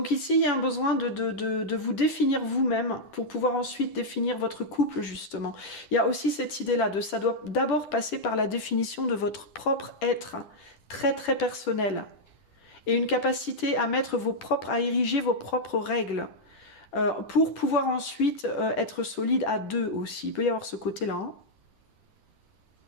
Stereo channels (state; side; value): late; right; 10 ms